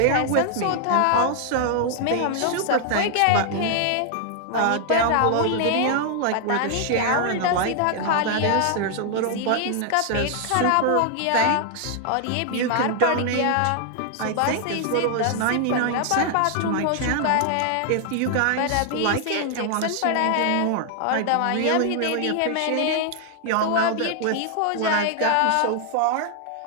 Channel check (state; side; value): different; both; correlation 0.00